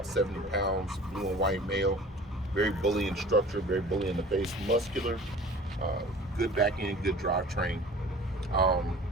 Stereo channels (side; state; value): both; normal; correlation 0.44